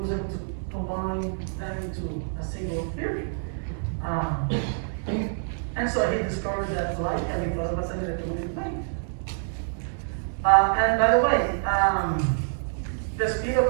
able to combine them into a single theory. And so he discovered that light can be caused by an electromagnetic wave. And by the way, the speed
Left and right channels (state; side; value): silent; left; digital silence